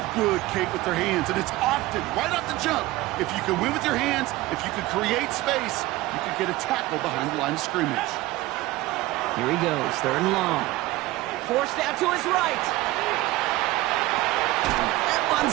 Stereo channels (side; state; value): left; quieter; 18.4 dB